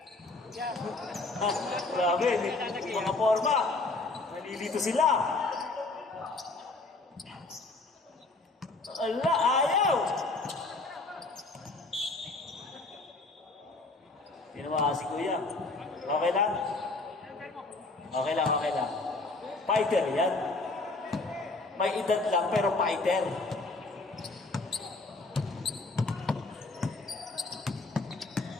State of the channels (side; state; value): right; quieter; 3.3 dB